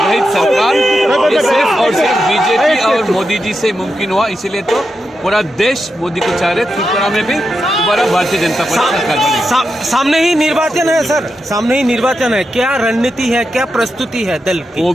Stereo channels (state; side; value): normal; both; correlation 0.87